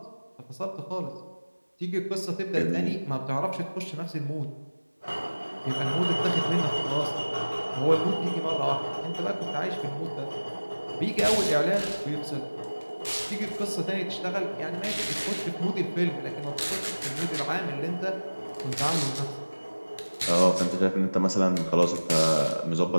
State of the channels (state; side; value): inverted; both; correlation -1.00